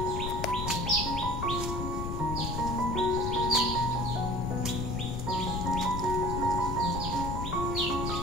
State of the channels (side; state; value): left; noise; rumble, 3 dB below the sound